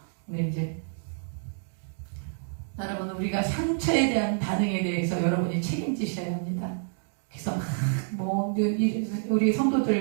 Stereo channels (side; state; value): left; silent; digital silence